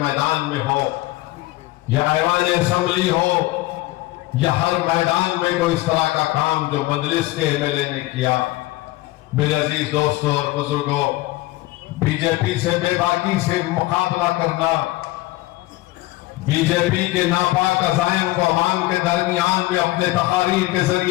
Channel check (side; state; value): right; quieter; 18.6 dB